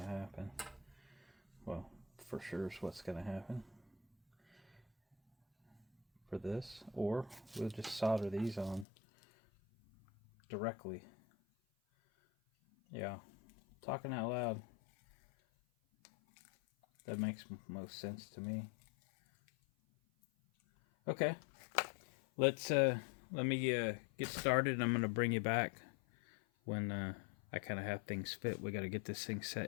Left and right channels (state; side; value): drops out; right; at 8.8 s